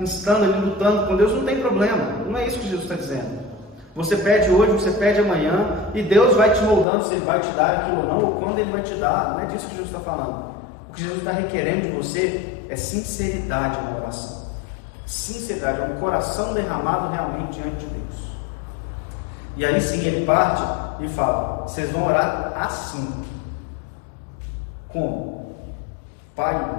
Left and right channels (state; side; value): drops out; right; at 6.9 s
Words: instando ali, lutando com Deus, não tem problema. Não é isso que Jesus está dizendo. Você pede hoje, você pede amanhã, e Deus vai te moldando se Ele vai te dar aquilo ou não, ou quando Ele vai te dar. Não é disso que Jesus está falando. O que Jesus está requerendo de você é sinceridade na oração. Sinceridade, é um coração derramado realmente diante de Deus. E aí sim ele parte e fala: vocês vão orar assim. Como? Pai